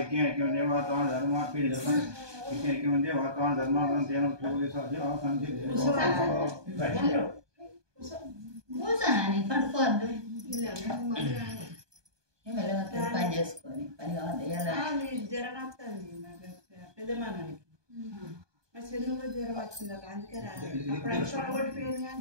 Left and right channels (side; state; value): left; late; 1.2 ms